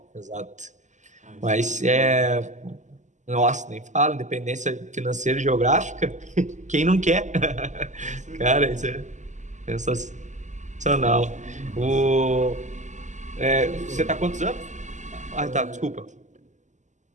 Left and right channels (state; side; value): late; left; 0.35 ms